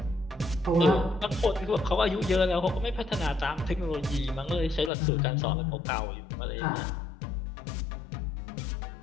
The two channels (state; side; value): drops out; right; at 4.9 s